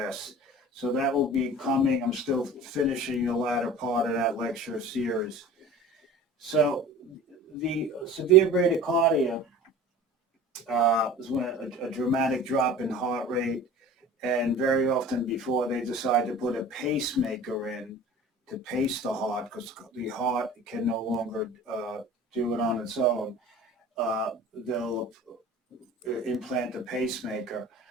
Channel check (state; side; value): normal; both; correlation 0.40